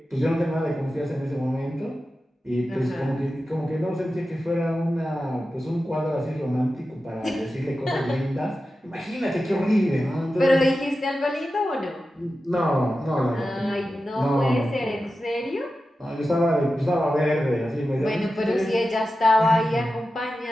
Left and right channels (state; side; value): normal; both; correlation 0.92